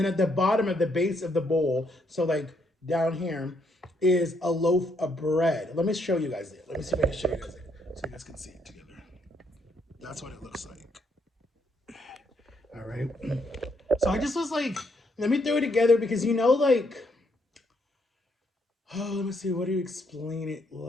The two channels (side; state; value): both; normal; correlation 0.73